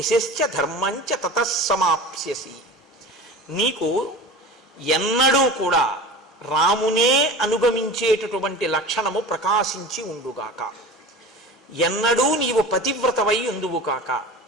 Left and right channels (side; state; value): both; normal; correlation 0.34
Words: ధర్మంచ తతస్సమాప్స్యసి. నీకు ఎన్నడూ కూడా రామునే అనుగమించేటటువంటి లక్షణము ప్రకాశించి ఉండుగాక. ఎన్నడూ నీవు పతివ్రతవై ఉందువు కాక.